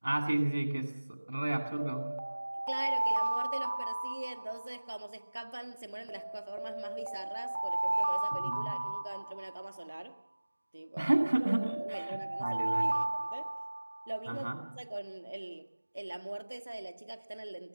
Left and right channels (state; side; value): inverted; both; correlation -1.00